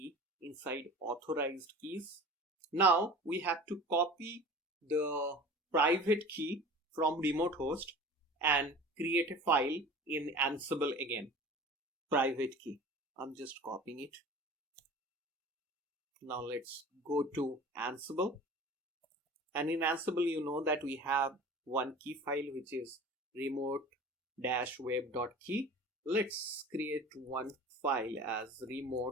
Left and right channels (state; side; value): normal; both; correlation 0.40